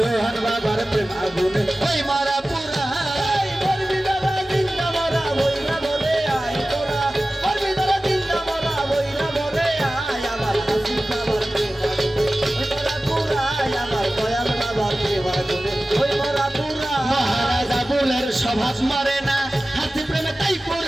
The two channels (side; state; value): both; normal; correlation 0.96